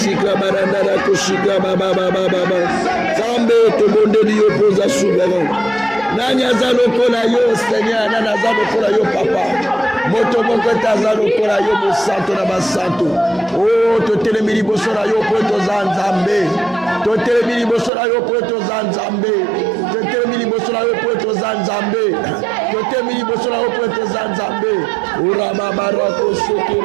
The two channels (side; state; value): left; drops out; at 17.9 s